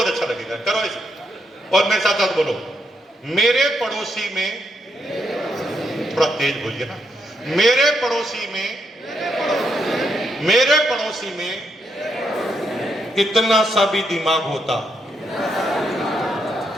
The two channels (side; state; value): both; normal; correlation 0.79